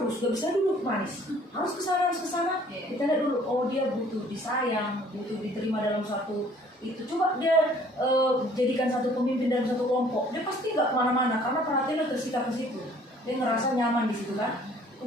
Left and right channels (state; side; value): normal; both; correlation 0.56